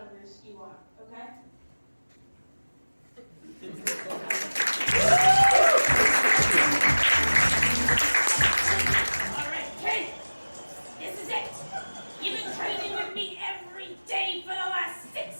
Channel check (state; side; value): inverted; both; correlation -1.00